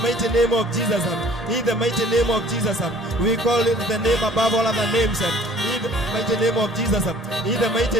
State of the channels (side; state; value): both; normal; correlation 0.53